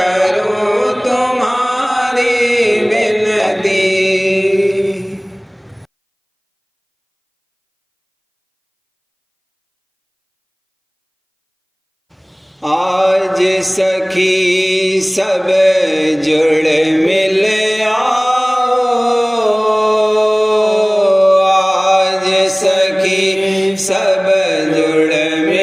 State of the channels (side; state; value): both; identical; correlation 1.00